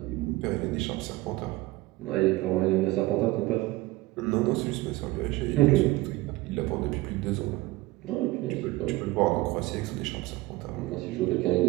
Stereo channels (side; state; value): left; quieter; 19.7 dB